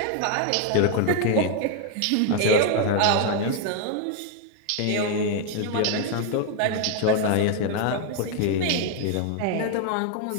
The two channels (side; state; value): both; different; correlation 0.00